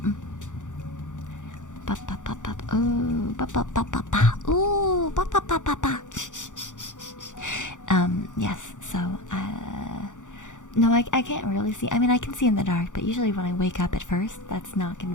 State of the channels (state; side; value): late; right; 0.86 ms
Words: Ba ba ba ba. Ooh, ba ba ba ba ba. Ooh, ba ba ba ba ba. Yes. So, no, I can't really see. I mean, I can see in the dark, but usually when I wake up at first, that's not